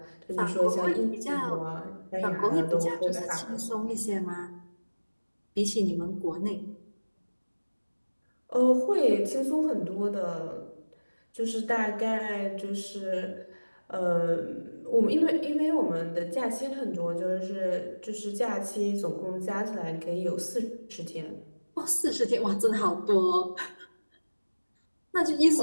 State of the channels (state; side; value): inverted; both; correlation -1.00